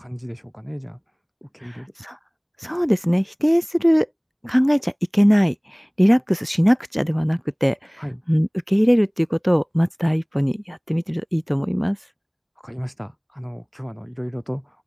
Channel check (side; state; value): both; identical; correlation 1.00